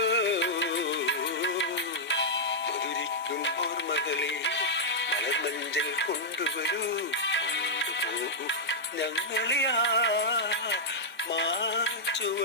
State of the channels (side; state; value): both; normal; correlation -0.07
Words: മധുരിക്കും ഓർമ്മകളെ മലമഞ്ചൽ കൊണ്ടുവരൂ, കൊണ്ടുപോകൂ ഞങ്ങളെ ആ